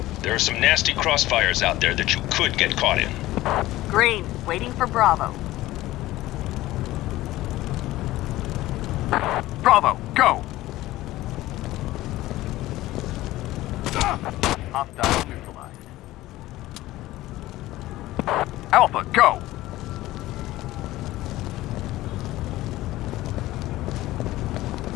There are some nasty crossfires out there that you could get caught in. Green, waiting for Bravo. Bravo, go! Hostile neutralized. Alpha, go!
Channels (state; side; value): quieter; right; 16.7 dB